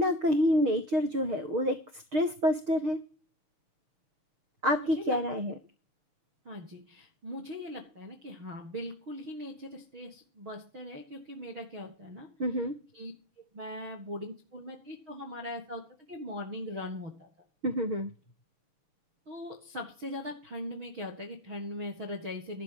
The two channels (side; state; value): left; late; 6.5 ms